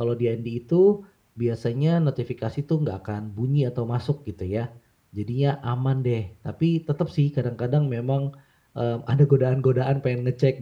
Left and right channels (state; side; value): identical; both; correlation 1.00